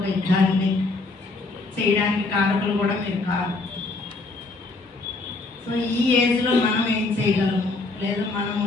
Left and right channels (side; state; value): right; quieter; 3.4 dB